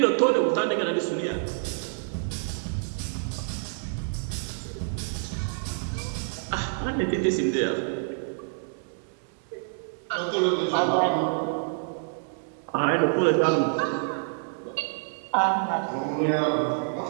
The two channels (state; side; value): silent; left; digital silence